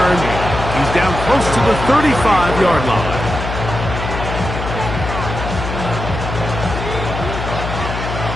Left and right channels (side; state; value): left; noise; hum, 5 dB below the sound